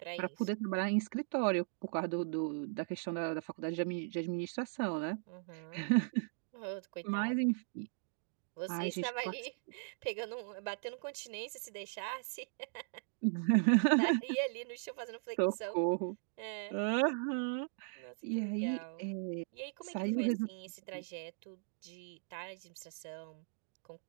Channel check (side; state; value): left; silent; digital silence